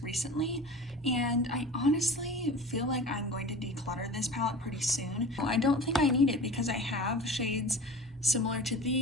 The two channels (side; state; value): both; normal; correlation 0.37